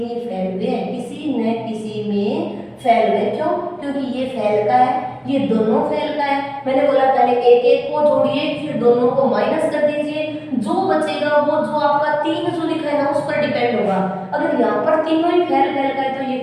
फेल हुए हैं, किसी न किसी में फेल हुए। क्यों? क्योंकि ये फेल का है, ये दोनों फेल का है। मैंने बोला पहले एक एक को जोड़िए, फिर दोनों को माइनस कर दीजिए, जो बचेगा वो जो आपका 3 जो लिखा है ना उस पर डिपेंड होगा। अगर यहाँ पर तीनों ही फेल का है तो ये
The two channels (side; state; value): both; identical; correlation 1.00